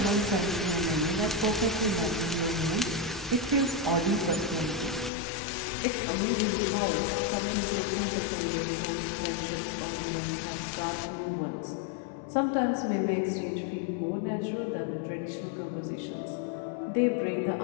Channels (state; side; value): drops out; right; at 5.1 s